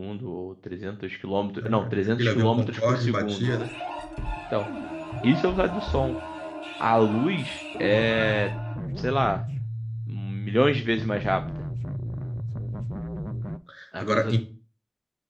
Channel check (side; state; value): both; identical; correlation 1.00